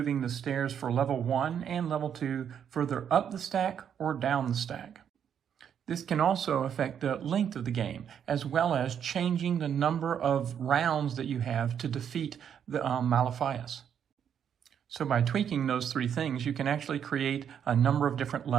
the stairs for level 1 and level 2 further up the stack or down the stack. This can also affect the length of the game, as well as changing the number of rounds that you have to defeat the Maliphias. So by tweaking those 3 things, you can actually create a number of different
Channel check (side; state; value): left; quieter; 8.5 dB